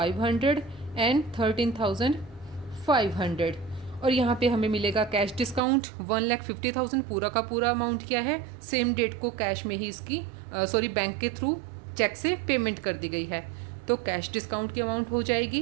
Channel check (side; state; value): left; drops out; at 5.6 s